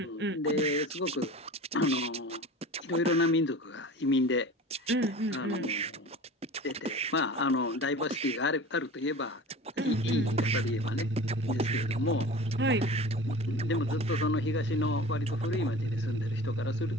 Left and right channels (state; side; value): normal; both; correlation 0.37